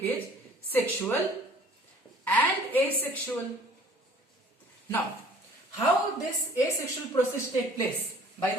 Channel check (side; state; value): both; normal; correlation 0.52